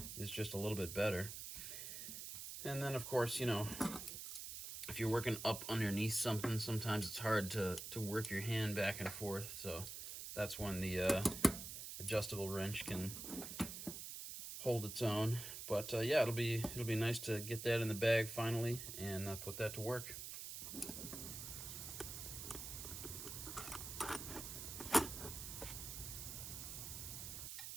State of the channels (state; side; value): noise; right; hiss, 7 dB below the sound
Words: just a little bit better. And then, of course, you know, if you're working up underneath something, sometimes it's hard to work your hand back and forth. So that's when the adjustable wrench can hold its own. But yeah, it'll be nice to get that in the bag finally and put that to work.